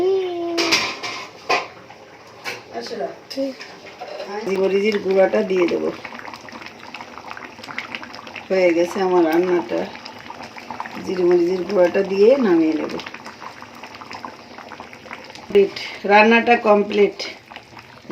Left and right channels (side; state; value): both; identical; correlation 1.00